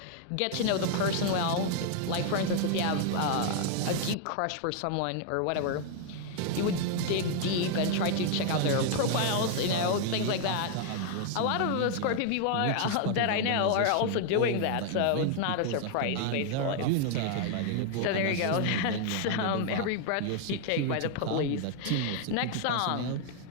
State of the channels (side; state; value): both; different; correlation 0.00